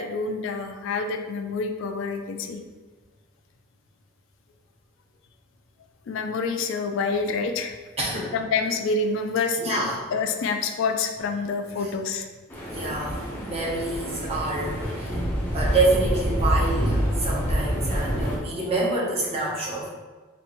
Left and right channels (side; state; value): both; normal; correlation 0.33